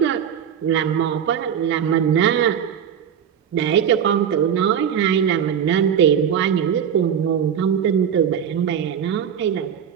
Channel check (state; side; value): quieter; left; 8.4 dB